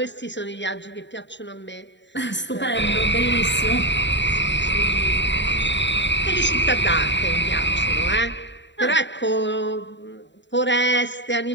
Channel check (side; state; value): right; late; 0.52 ms